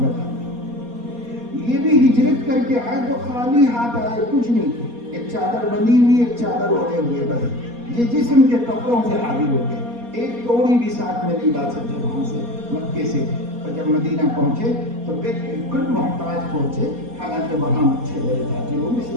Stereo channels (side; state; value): left; late; 4.2 ms